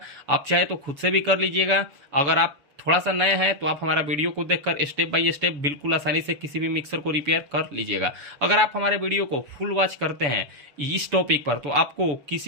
आप चाहे तो खुद से भी कर लीजिएगा। अगर आप थोड़ा सा नया है तो आप हमारा वीडियो को देखकर स्टेप बाय स्टेप बिल्कुल आसानी से किसी भी मिक्सर को रिपेयर कर लीजिएगा। अगर आप हमारे वीडियो को फुल वॉच करते हैं इस टॉपिक पर तो आपको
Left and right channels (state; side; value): late; left; 7.0 ms